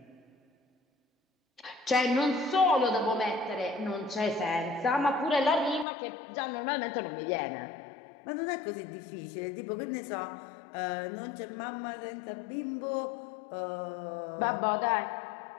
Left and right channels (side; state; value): right; drops out; at 5.9 s